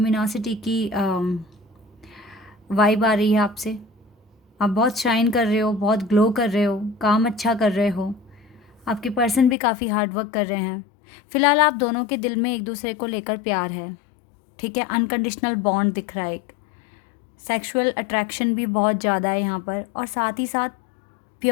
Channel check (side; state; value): right; drops out; at 9.6 s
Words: की वाइब आ रही है आपसे। आप बहुत शाइन कर रहे हो, बहुत ग्लो कर रहे हो, काम अच्छा कर रहे हो। आपके पर्सन भी काफ़ी हार्ड वर्क कर रहे हैं। फ़िलहाल आप दोनों के दिल में एक दूसरे को लेकर प्यार है। ठीक है, अनकंडीशनल बॉन्ड दिख रहा है, एक सेक्सुअल अट्रैक्शन भी बहुत ज़्यादा है यहाँ पर, और साथ ही साथ